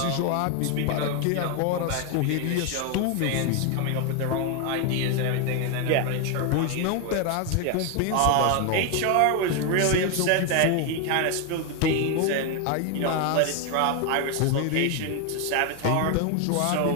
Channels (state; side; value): different; both; correlation 0.01